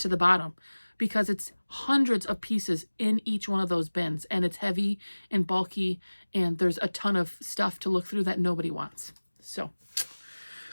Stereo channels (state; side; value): inverted; both; correlation -1.00